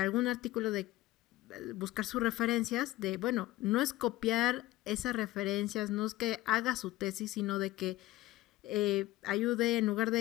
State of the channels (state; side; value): quieter; right; 16.9 dB